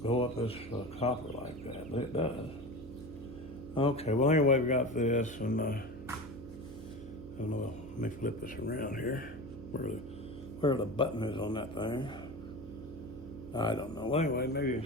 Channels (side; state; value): right; noise; hum, 13 dB below the sound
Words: go up this copper like that, but it does. Okay, well anyway, we got this, and I don't know, let me flip this around here. Where the button is on that thing. I don't know. Well, anyway, maybe you